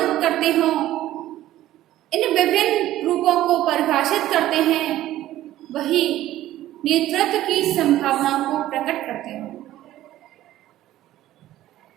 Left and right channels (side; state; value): left; quieter; 14.2 dB